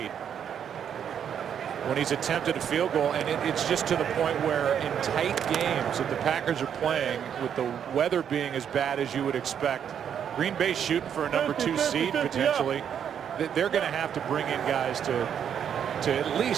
when he's attempted a field goal, and it's just to the point where in tight games that the Packers are playing, with the weather being as bad as you would expect, Green Bay shooting for a number 2 seed potentially, they're going to have to bring in guys to at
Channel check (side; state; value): left; quieter; 8.5 dB